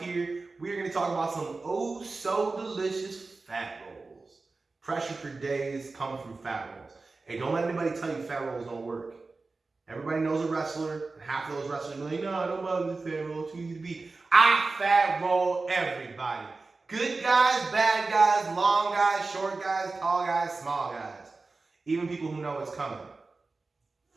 here. We are going to talk about some oh so delicious fat rolls. Pressure for days coming from fat rolls. Hey, don't let anybody tell you fat rolls don't work. Everybody knows a wrestler, and half of those wrestlers are like, no, I don't bother the fat roll, it's too easy to beat. I fat roll everybody. Good guys, bad guys, long guys, short guys, tall guys, small guys. Even people who know it's coming.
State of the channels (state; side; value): quieter; left; 3.7 dB